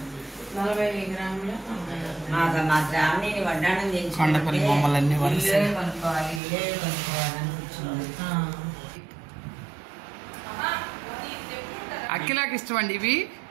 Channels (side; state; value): left; drops out; at 6.4 s